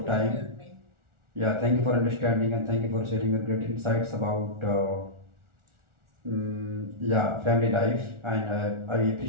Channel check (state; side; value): late; left; 1.4 ms